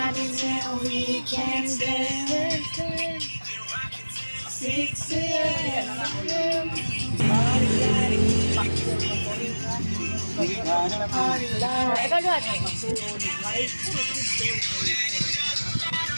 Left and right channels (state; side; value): inverted; both; correlation -1.00